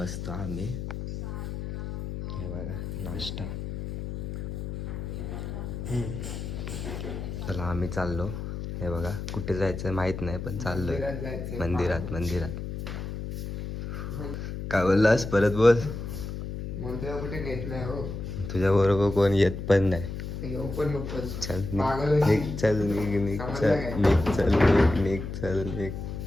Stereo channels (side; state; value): left; noise; hum, 6 dB below the sound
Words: आम्ही. हे बघा नाश्ता. चला आम्ही चाललो. हे बघा कुठे जायचं माहीत नाही पण चाललोय मंदिरात. काय बोललास परत बोल. कुठे नेत नाही हो. तुझ्या बरोबर कोण येत पण नाही. चल निघ.